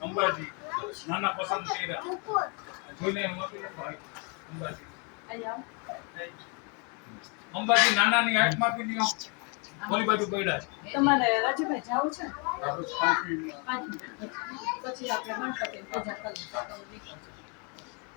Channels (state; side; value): quieter; right; 34.8 dB